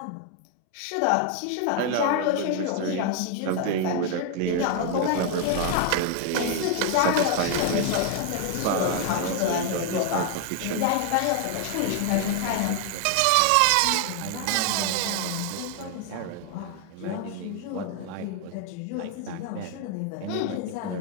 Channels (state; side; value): different; both; correlation 0.00